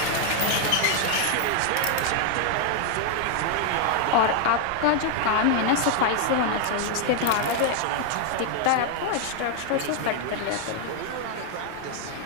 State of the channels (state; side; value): different; both; correlation 0.01